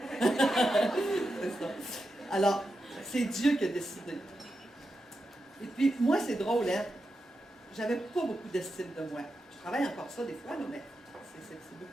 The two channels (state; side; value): normal; both; correlation 0.88